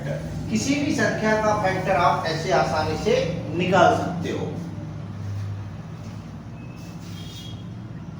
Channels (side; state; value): both; identical; correlation 1.00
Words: किसी भी संख्या का फैक्टर आप ऐसे आसानी से निकाल सकते हो।